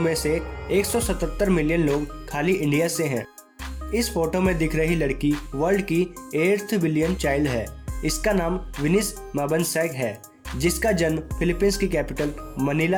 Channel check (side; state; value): both; identical; correlation 1.00